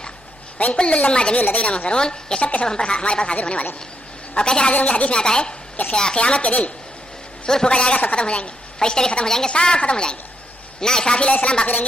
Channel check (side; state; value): left; noise; hum, 29 dB below the sound